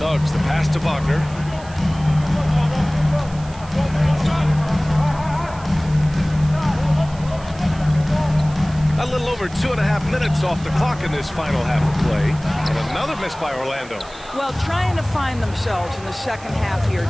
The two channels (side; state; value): right; noise; hiss, 21 dB below the sound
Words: the pass to Wagner. A little over 2.5 minutes off the clock in this final half of play. And another miss by Orlando. Well, trying to find themselves in the second half here.